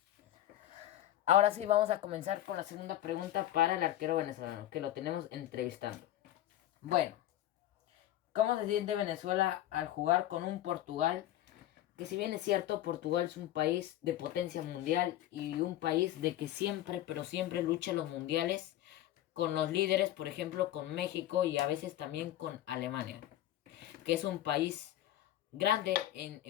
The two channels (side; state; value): right; quieter; 13.4 dB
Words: Ahora sí, vamos a comenzar con la segunda pregunta para el arquero venezolano, que lo tenemos entrevistando. Bueno, ¿cómo se siente Venezuela al jugar con un Portugal? Que si bien es cierto, Portugal es un país de potencia mundial y un país de que siempre, pero siempre lucha los mundiales con los líderes, por ejemplo, con México y a veces también con Alemania, que es un país grande en